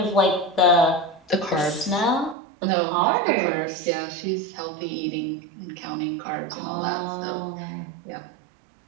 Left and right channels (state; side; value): drops out; left; at 2.4 s